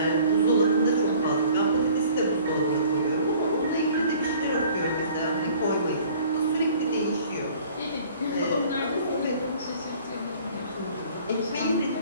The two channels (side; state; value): both; inverted; correlation -0.52